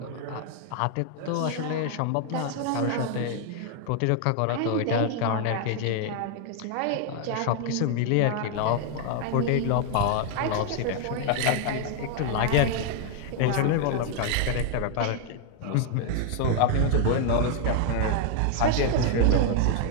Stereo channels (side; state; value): both; different; correlation 0.00